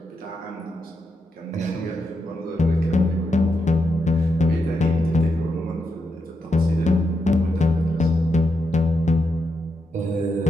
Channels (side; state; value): both; normal; correlation 0.84